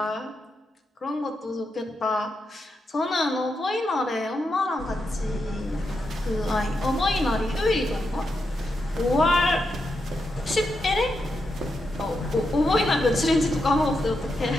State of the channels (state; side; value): normal; both; correlation 0.85